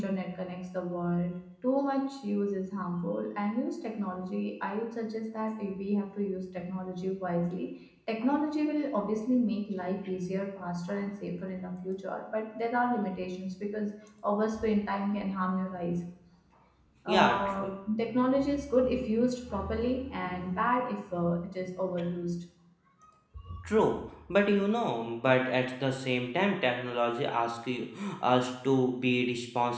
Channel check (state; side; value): identical; both; correlation 1.00